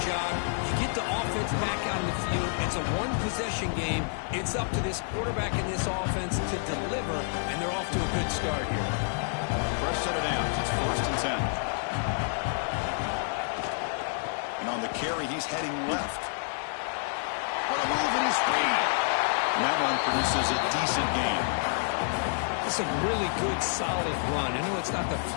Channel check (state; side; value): silent; right; 57 dB below the other